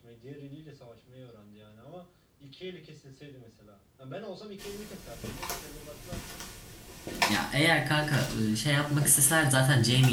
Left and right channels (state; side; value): identical; both; correlation 1.00